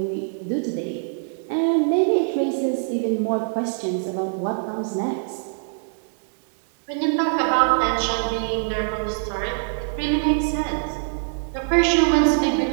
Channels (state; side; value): silent; left; 63 dB below the other